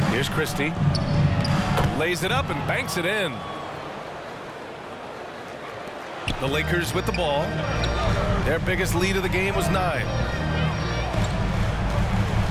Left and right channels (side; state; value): both; identical; correlation 1.00